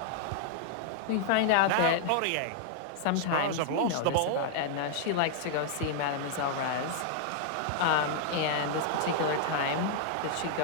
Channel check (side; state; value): both; different; correlation -0.01